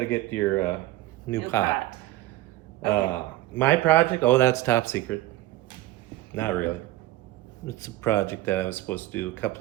get your new pot. Okay. My project? Oh, that's top secret. Not really. It's a project that I was supposed to do a couple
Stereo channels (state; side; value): quieter; left; 16.5 dB